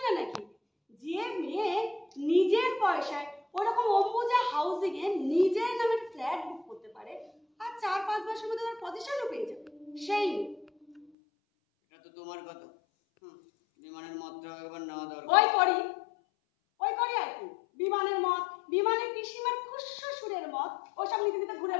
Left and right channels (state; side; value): drops out; right; at 11.1 s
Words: নাকি? যে মেয়ে নিজের পয়সায় ওরকম অম্বুজা হাউসিং এ নিজের নামে ফ্ল্যাট বুক করতে পারে আর 4-5 মাসের মধ্যে তার পজিশনও পেয়ে যাবে, সেই এটা তো তোমার কথা। বিমানের মতটা একবার নেওয়া দরকার। ওই করি আর কি। বিমানের মত, বিমানের পিসিমার খুশশুরের মত, ওসব নিতে নিতে ঘুরে